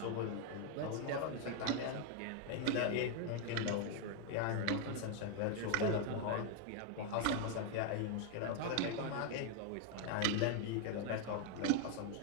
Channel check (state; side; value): different; both; correlation 0.01